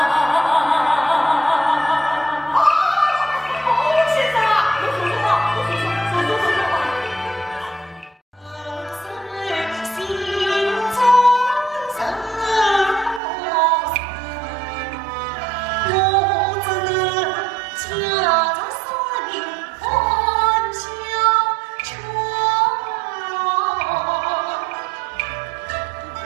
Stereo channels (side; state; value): left; drops out; at 13.2 s